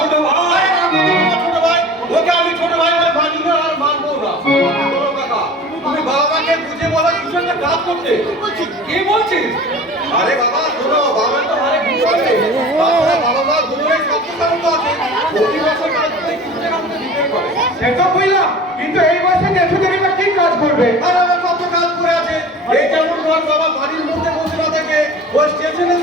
ভাই, ছোট ভাই, ওকে আমি ছোট ভাই বলে মানি না আর মানবো না। তুমি বাবাকে বুঝে বলা কিছু একটা কাজ করতে। কি বলছিস? আরে বাবা শোনো, বাবা তো অনেক কিছু আছে। বাবা মা দুজনেই সবচেয়ে তো আছে। প্রতি বছর কাজ করে কিছু টাকা আমাকে দিতে করে। সেটা কইলাম, কিন্তু এই বছর দেশে দেরিবা কি কাজ করবে? আর আমার কত কাজ করে আছে। এই যেমন ধর বাবা বাড়ির মধ্যে বসে না থাকে, ওই স্টেশনের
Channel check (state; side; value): normal; both; correlation 0.40